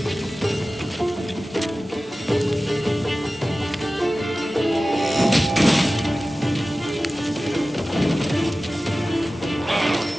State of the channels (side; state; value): both; normal; correlation 0.96